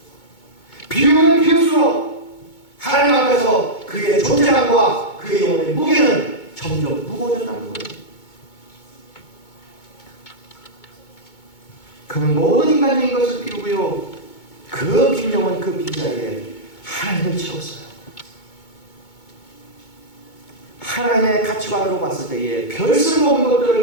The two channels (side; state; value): right; late; 2.2 ms